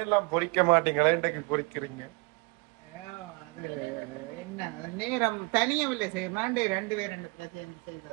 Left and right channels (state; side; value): quieter; left; 30.3 dB